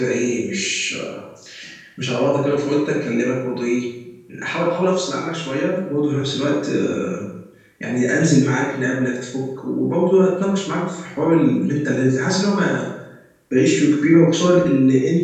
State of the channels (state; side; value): identical; both; correlation 1.00